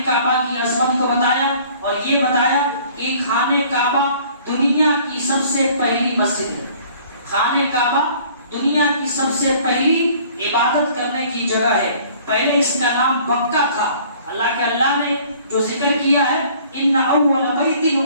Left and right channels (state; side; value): inverted; both; correlation -0.54